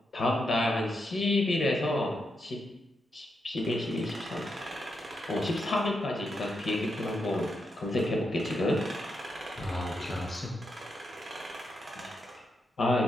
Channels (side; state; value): both; normal; correlation 0.84